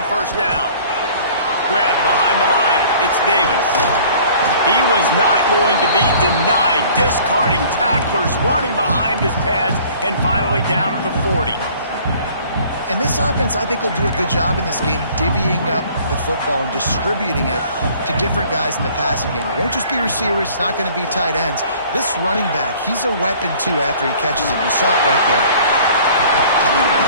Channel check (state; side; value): inverted; both; correlation -0.52